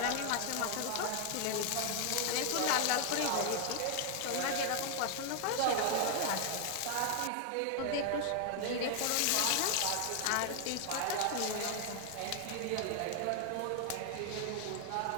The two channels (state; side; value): different; both; correlation 0.00